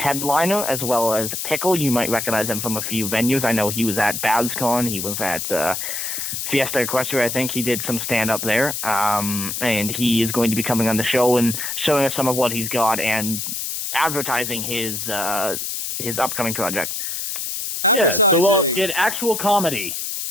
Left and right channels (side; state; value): left; noise; hiss, 4 dB below the sound